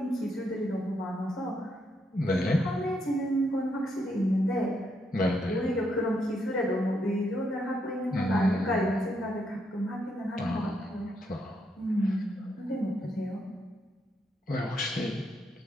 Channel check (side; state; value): both; normal; correlation 0.78